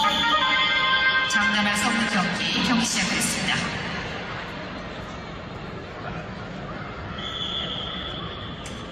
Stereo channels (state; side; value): noise; right; hum, 26 dB below the sound